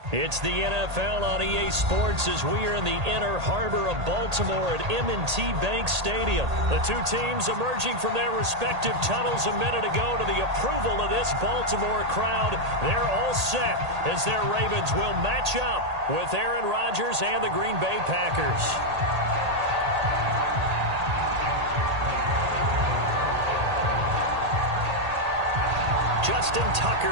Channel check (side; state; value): left; late; 1.8 ms